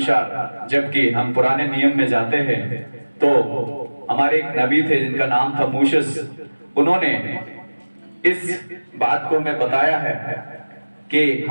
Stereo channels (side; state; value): both; inverted; correlation -1.00